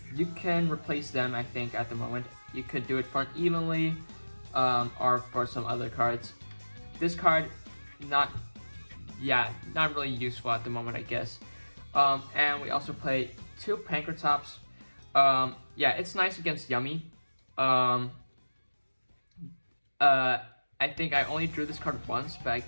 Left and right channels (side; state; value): both; inverted; correlation -1.00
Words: You can replace them, I think, at the moment. You could do it for an evenly, or for some other cards. This card, not really useful at the moment, I guess. And we also play 2 Pankratops. It's nice against Yummy. I think I only drew this card once, but I